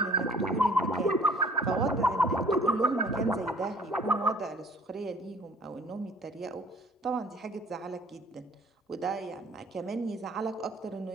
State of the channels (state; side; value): normal; both; correlation 0.54